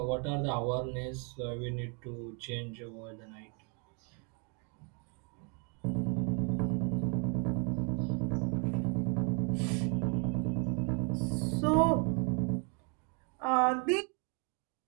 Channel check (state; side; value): quieter; left; 36.5 dB